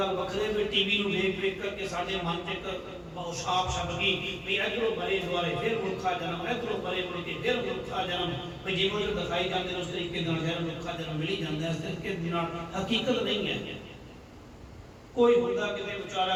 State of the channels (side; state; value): both; identical; correlation 1.00